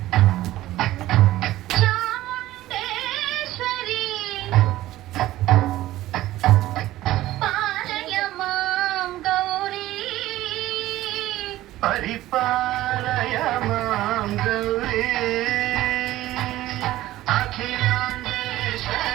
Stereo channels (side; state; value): left; quieter; 15.6 dB